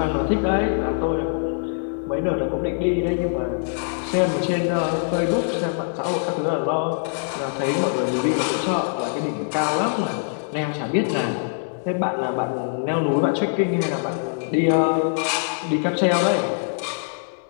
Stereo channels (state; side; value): silent; right; digital silence